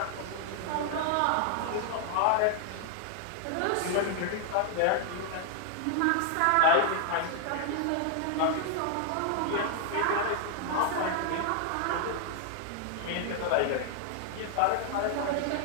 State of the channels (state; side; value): different; both; correlation 0.00